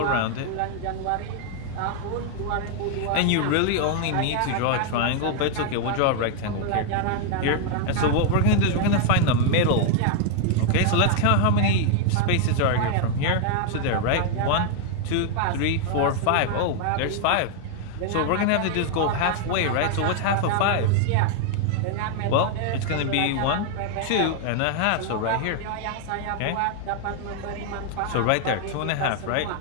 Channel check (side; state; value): both; different; correlation 0.00